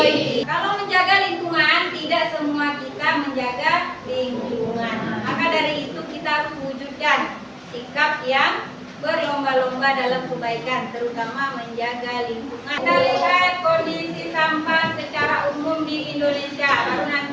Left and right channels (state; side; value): identical; both; correlation 1.00